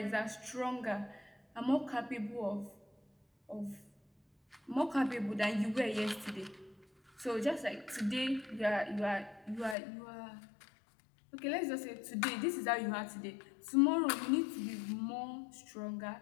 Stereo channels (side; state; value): right; drops out; at 9.8 s